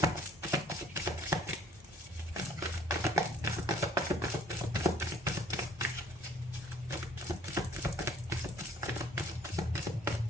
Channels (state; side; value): normal; both; correlation 0.58